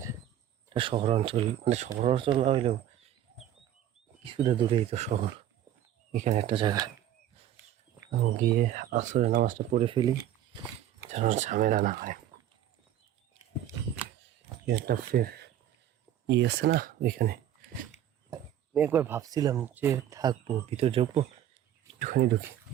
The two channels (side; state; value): left; quieter; 11.4 dB